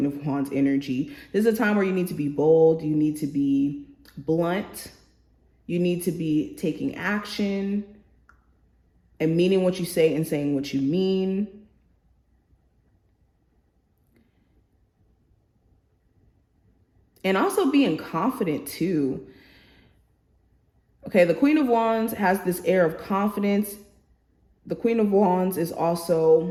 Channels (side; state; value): both; identical; correlation 1.00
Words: of Wands energy. This is a time where you need to be bold. You need to be blunt. You need to be taking action and meaning what you say and saying what you mean. And also being confident too. Okay, the Queen of Wands has this air of confidence. The Queen of Wands is